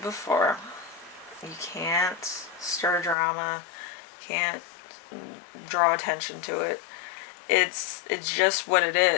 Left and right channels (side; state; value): right; drops out; at 3.2 s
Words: before, you can't stir drama, can't draw attention to it. It's just what it